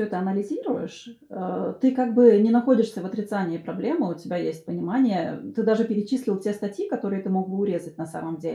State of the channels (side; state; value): both; identical; correlation 1.00